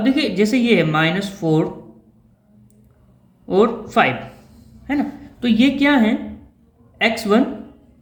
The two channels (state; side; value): identical; both; correlation 1.00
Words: देखिए जैसे ये है -4 और 5, है ना, तो ये क्या है x1